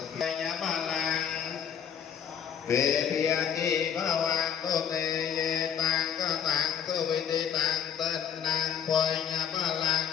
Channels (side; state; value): right; quieter; 8.3 dB